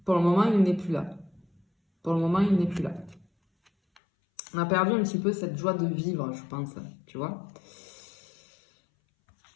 pour le moment, il n'est plus là. Pour le moment, il n'est plus là. On a perdu un petit peu cette joie de vivre, je pense, tu vois.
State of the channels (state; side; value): drops out; right; at 4.0 s